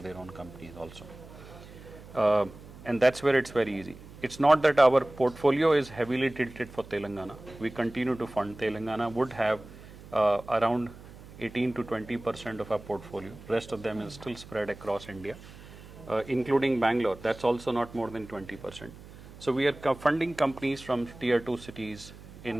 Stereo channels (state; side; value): noise; right; hum, 18 dB below the sound